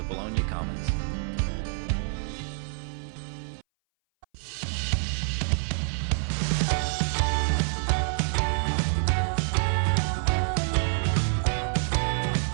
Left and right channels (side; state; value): left; silent; 59 dB below the other